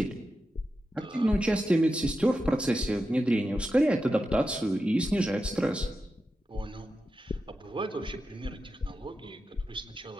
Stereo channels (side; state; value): both; normal; correlation 0.90